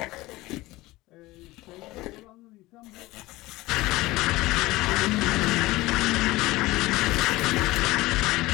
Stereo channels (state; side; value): quieter; right; 19.2 dB